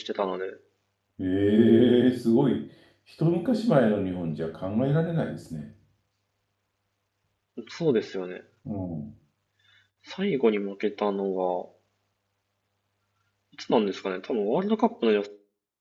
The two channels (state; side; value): identical; both; correlation 1.00